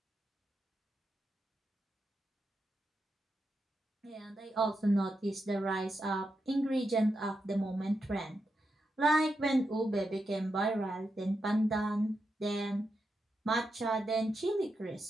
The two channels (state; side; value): normal; both; correlation 0.86